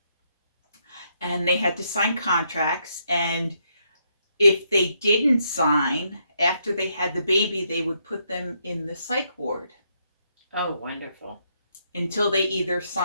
And they had to sign contracts. And if they didn't sign, after they had the baby, they would put them in the psych ward. Oh, wonderful. Until they either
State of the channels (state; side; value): inverted; both; correlation -0.76